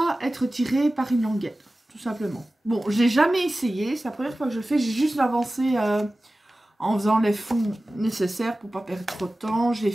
être tiré par une languette, tout simplement. Bon, j'ai jamais essayé, c'est la première fois que je le fais, j'ai juste avancé en faisant les fonds nécessaires pour pas perdre trop de temps. J'ai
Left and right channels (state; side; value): normal; both; correlation 0.96